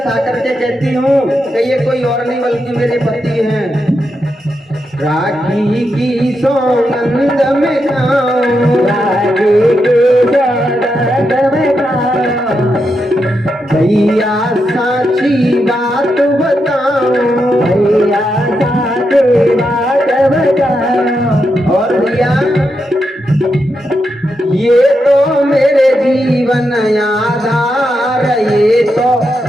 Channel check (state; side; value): normal; both; correlation 0.84